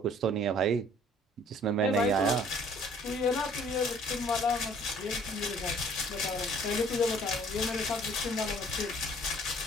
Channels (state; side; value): normal; both; correlation 0.56